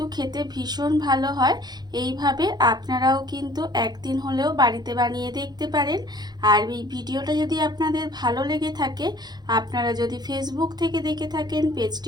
খেতে ভীষণ ভালো হয়। এইভাবে আপনারাও কিন্তু একদিন হলেও বাড়িতে বানিয়ে দেখতে পারেন। আর এই ভিডিওটা যদি আপনাদের ভালো লেগে থাকে, আপনারা যদি ফেসবুক থেকে দেখে থাকেন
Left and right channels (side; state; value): left; late; 0.20 ms